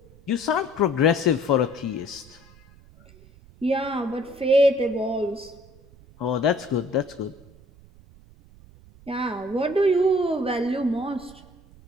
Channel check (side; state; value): right; noise; rumble, 24 dB below the sound